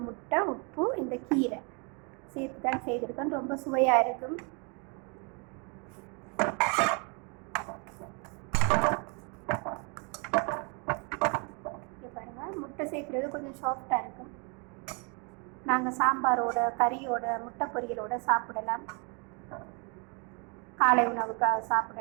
முட்டை, உப்பு, இந்த கீரை சேர்த்து தான் செய்திருக்கேன். ரொம்ப சுவையாக இருக்கும். முட்டை சேர்க்குறது கொஞ்சம் சாஃப்டாக இருக்கும். நாங்கள் சாம்பாரோட, கறியோட, முட்டை பொரியலோட சாப்பிடலாம். காலை உணவுக்காக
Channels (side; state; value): left; quieter; 34.0 dB